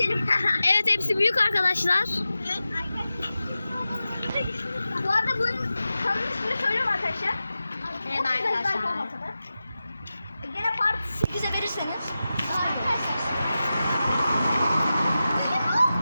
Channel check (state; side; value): inverted; both; correlation -0.93